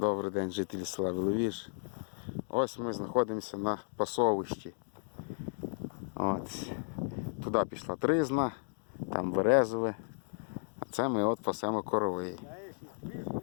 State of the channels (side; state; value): right; silent; digital silence